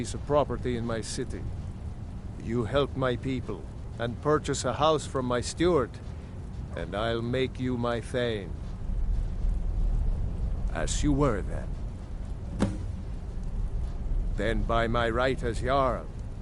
of property in my city. You help my people, and purchase a house from my steward, and I'll make you my Thane. As you were then. Then by my right as Jarl,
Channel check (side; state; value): both; identical; correlation 1.00